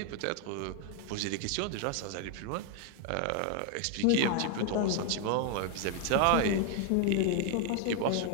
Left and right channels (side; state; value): both; different; correlation 0.01